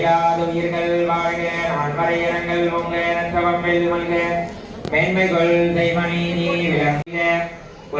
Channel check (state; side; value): identical; both; correlation 1.00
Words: உயிர்கள் வாழ்க நான்மறையரங்கள் உங்க நற்றவம் வெல்மல்க மேன்மைகள் தெய்வநீதி விளங்க